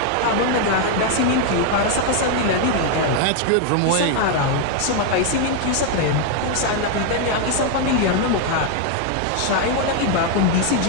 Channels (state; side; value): different; both; correlation 0.00